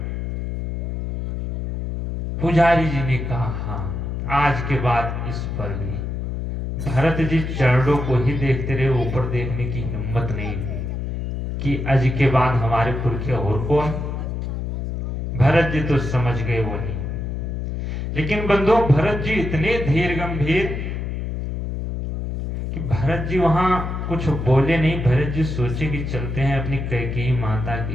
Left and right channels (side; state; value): left; noise; hum, 3 dB below the sound